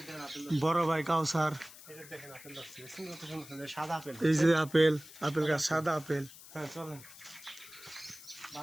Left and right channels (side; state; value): left; noise; hiss, 18 dB below the sound